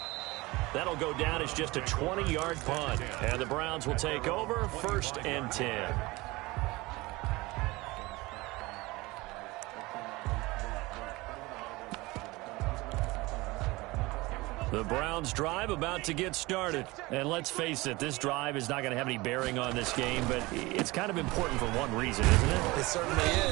That'll go down as just a 20-yard punt. And the Browns will take over 1st and 10. The Browns drive about to get started. And let's face it, this drive is not going to have any bearing on this game, but it's kind of important for one reason, isn't it? It certainly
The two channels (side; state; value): left; quieter; 21.8 dB